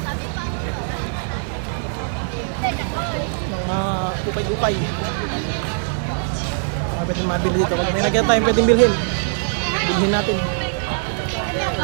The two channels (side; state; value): left; silent; digital silence